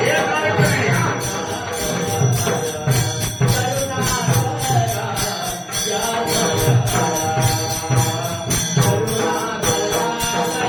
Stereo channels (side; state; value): both; identical; correlation 1.00